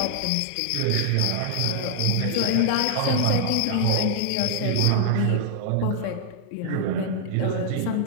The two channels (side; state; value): both; different; correlation -0.01